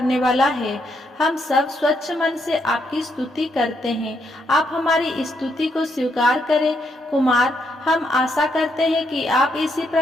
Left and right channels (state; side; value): normal; both; correlation 0.77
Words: वाला है। हम सब स्वच्छ मन से आपकी स्तुति करते हैं। आप हमारी स्तुति को स्वीकार करें। कुमार, हम आशा करते हैं कि आप इसी